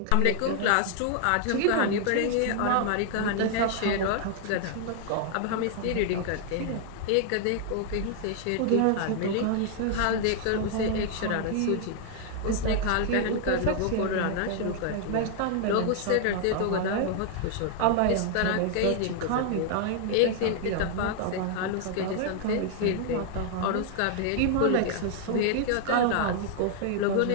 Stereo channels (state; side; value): different; both; correlation 0.00